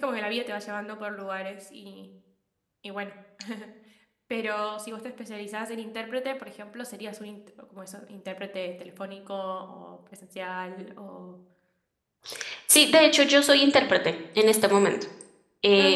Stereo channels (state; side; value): identical; both; correlation 1.00